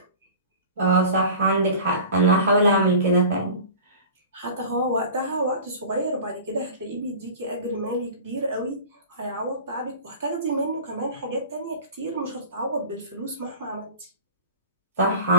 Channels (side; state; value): both; inverted; correlation -0.37